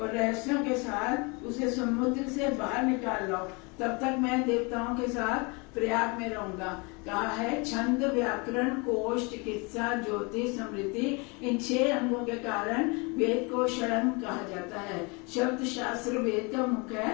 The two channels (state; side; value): quieter; right; 29.8 dB